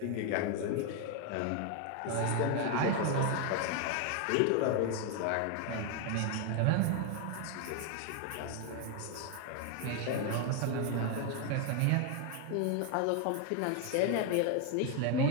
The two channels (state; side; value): different; both; correlation 0.01